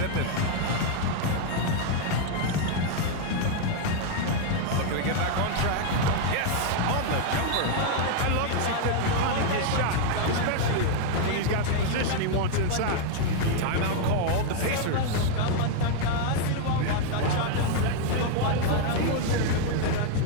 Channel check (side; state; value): both; different; correlation 0.00